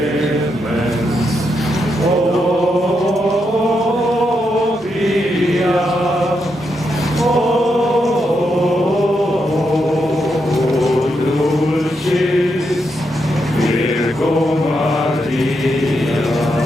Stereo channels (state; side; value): normal; both; correlation 0.82